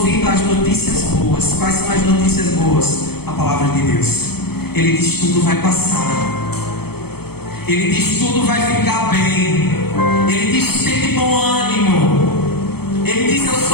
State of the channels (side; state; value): right; late; 0.96 ms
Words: às notícias boas. Quais são as notícias boas? A palavra de Deus. Ele diz: tudo vai passar. Ele diz: tudo vai ficar bem. Ele diz: tem de bom ânimo. Ele diz: eu